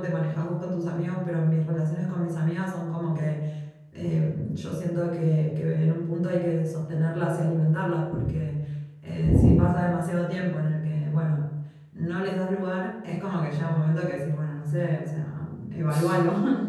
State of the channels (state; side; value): identical; both; correlation 1.00